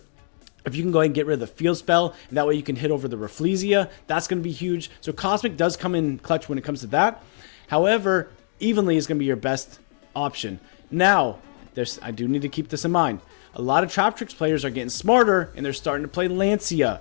if you can go ahead and get rid of the field spell, and that way you can hit over the Rafflesia, that's going to be huge. So Cosmic does come in clutch when it comes to that. However, Evenly is going to be your best option. Now, I do need to keep this in mind. A lot of Traptrix players are getting smarter, and they're starting to play Lancia.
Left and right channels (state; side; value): silent; right; digital silence